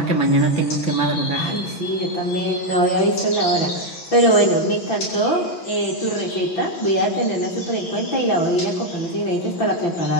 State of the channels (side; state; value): right; late; 6.1 ms